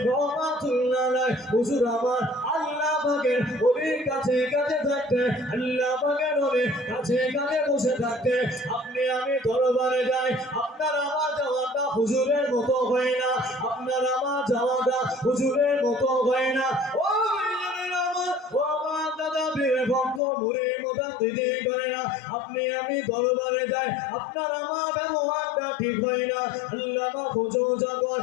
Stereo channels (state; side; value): drops out; right; at 20.2 s